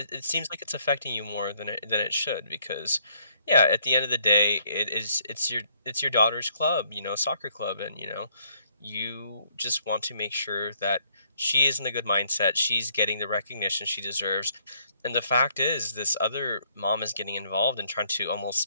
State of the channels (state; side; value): inverted; both; correlation -0.66